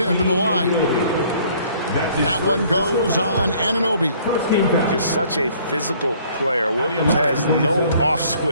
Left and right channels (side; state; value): both; inverted; correlation -0.58